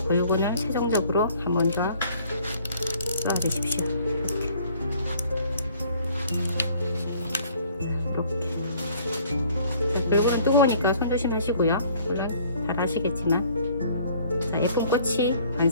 글루건을 최종적으로 한 번 더 넣어 주십시오. 글루건은 뜨거우니까 손 조심하시고요. 물론 잘 아시겠지만 자, 예쁜 꽃이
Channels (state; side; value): inverted; both; correlation -0.57